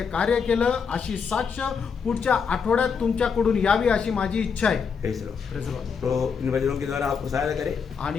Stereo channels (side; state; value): right; quieter; 6.1 dB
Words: कार्य केलं अशी साक्ष पुढच्या आठवड्यात तुमच्याकडून यावी अशी माझी इच्छा आहे। Praise the Lord. Praise the Lord. तो इन वचनों के द्वारा आपको सहायता करे,